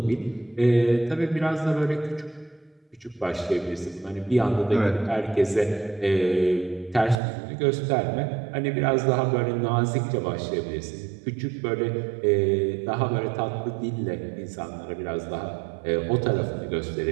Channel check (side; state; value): left; drops out; at 7.2 s